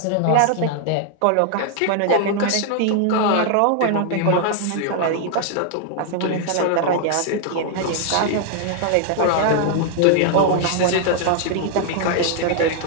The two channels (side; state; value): both; different; correlation 0.00